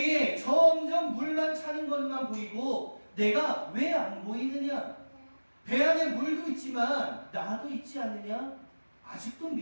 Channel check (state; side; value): inverted; both; correlation -1.00